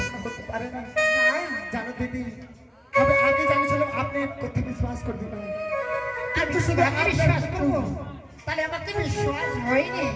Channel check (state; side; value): identical; both; correlation 1.00